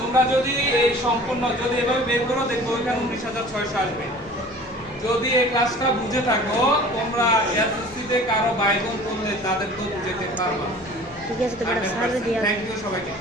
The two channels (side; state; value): left; noise; rumble, 23 dB below the sound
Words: যদি এই সম্পূর্ণ যদি এভাবে বের করো দেখো ওইখানে 19600 আসবে। যদি এই ক্লাসটা বুঝে থাকো তোমরা এসএসসি তে কারো বাইগন করলে তাদেরকেও বুঝাতে পারবা। ঠিক আছে তো বেটা সার্ভে দিয়া থ্যাংক ইউ সবাইকে।